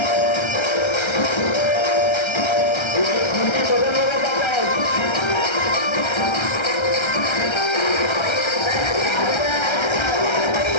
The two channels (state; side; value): late; right; 1.3 ms